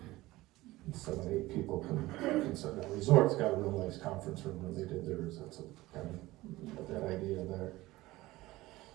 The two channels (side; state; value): left; quieter; 18.4 dB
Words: and 7, 8 people can sit down. Resort's got a real nice conference room when they did theirs. That's kind of that idea there.